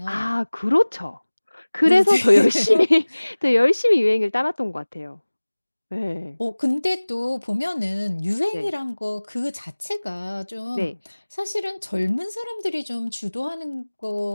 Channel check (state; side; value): inverted; both; correlation -1.00